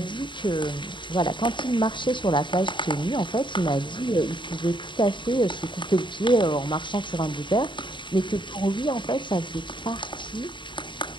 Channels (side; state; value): right; late; 0.23 ms